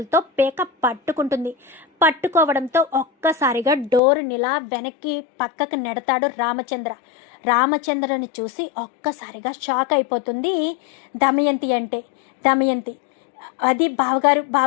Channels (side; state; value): right; drops out; at 4.0 s